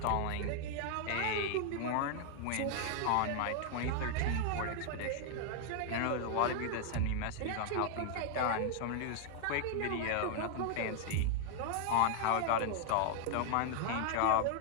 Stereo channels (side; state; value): both; different; correlation 0.00